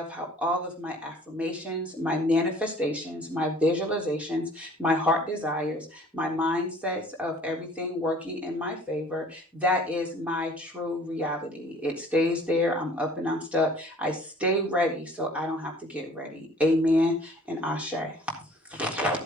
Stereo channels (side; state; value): both; normal; correlation 0.51